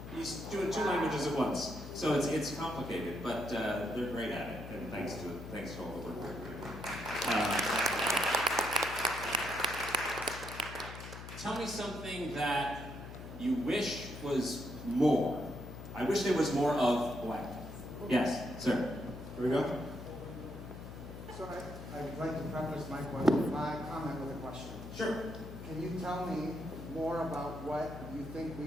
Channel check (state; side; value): noise; left; hum, 11 dB below the sound